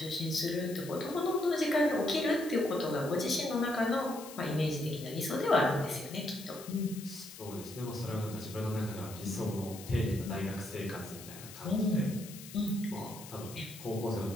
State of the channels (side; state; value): left; noise; hiss, 15 dB below the sound